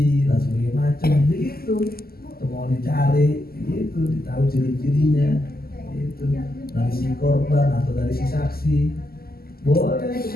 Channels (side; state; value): right; late; 0.44 ms